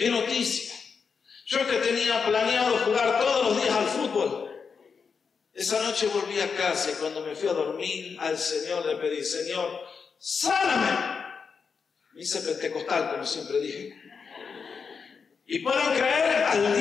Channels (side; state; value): right; quieter; 5.7 dB